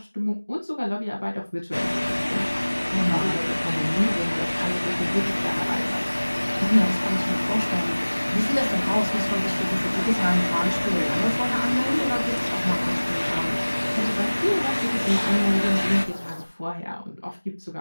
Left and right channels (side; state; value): both; inverted; correlation -1.00